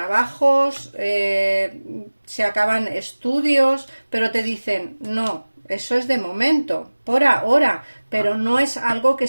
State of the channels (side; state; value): both; inverted; correlation -1.00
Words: se acaban estudios, pero te dicen, no, eso es de momento, por ahora, pero no es algo que